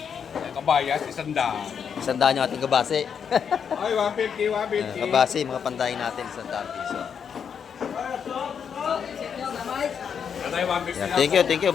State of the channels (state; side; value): quieter; right; 7.2 dB